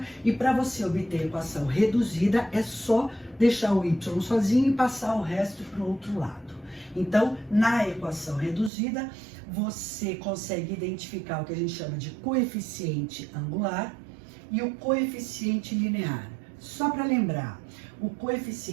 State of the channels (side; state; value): left; drops out; at 8.7 s